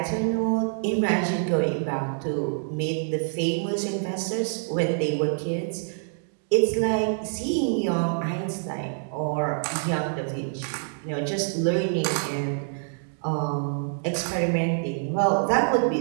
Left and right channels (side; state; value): left; silent; digital silence